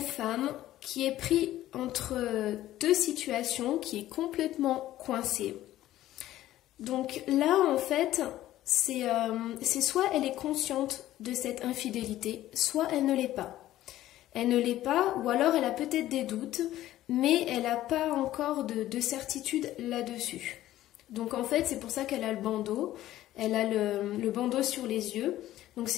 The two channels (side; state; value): right; quieter; 14.2 dB